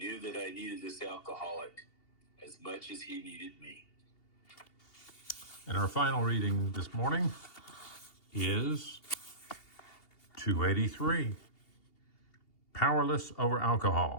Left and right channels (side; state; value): right; late; 2.8 ms